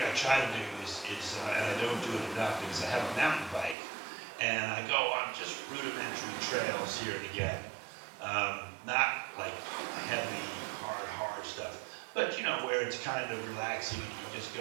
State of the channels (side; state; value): left; drops out; at 3.8 s